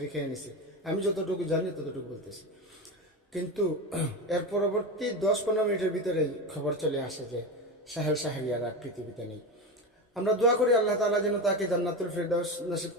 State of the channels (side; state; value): both; normal; correlation 0.20